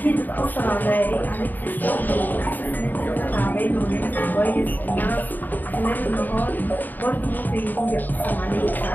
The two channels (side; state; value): right; late; 0.088 ms